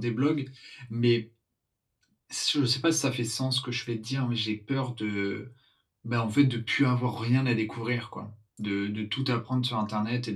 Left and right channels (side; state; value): both; identical; correlation 1.00